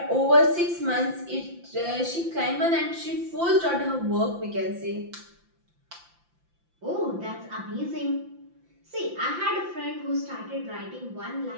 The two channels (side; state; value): left; late; 5.8 ms